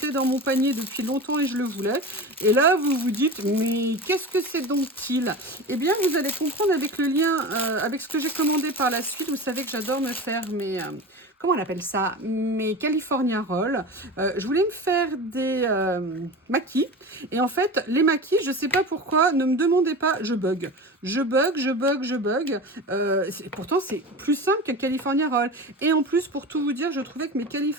dans mon panier depuis longtemps et je le voulais. Et là, vous vous dites, mais qu'est-ce que c'est donc-il? Eh bien, vous allez comprendre avec le lien, avec ce que j'ai commandé par la suite. Vous savez que j'adore me faire mes... comment on appelle ça? Mes California Rolls. Je voulais me faire des maquis. Et en fait, les maquis, je ne sais pas pourquoi, ne me demandez pas, je bug. Je bug. Pourtant, c'est plus simple qu'un California Roll. Et en plus, pour tout vous dire, je trouvais que mes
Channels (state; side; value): normal; both; correlation 0.30